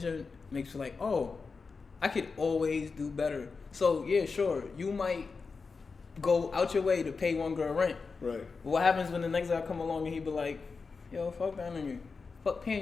makes you like, oh, I could always do better. So yeah, sure, you might go out your way to pay one girl rent. Right. But what happens when the next guy come along and he be like, yo, fuck that nigga.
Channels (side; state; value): right; quieter; 4.7 dB